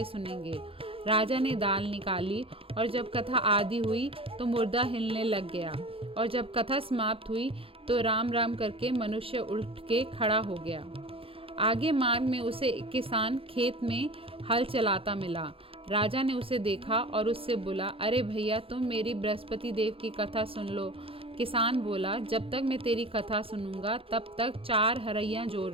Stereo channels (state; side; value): late; left; 0.27 ms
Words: सुनेंगे। राजा ने दाल निकाली और जब कथा आदि हुई तो मुर्दा हिलने लग गया, और जब कथा समाप्त हुई तो राम राम करके मनुष्य उठ के खड़ा हो गया। आगे मार्ग में उसे एक किसान खेत में हल चलाता मिला। राजा ने उसे देखा और उससे बोला, अरे भैया, तुम मेरी बृहस्पति देव की कथा सुन लो। किसान बोला, जब तक मैं तेरी कथा सुनूंगा तब तक 4 हरैया जोड़